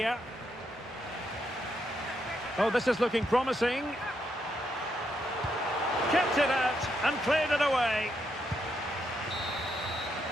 Oh, this is looking promising. Kept it out and cleared it away.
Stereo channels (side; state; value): both; normal; correlation 0.79